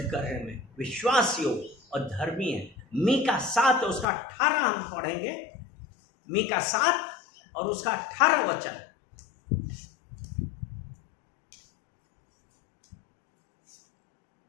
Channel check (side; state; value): right; drops out; at 4.0 s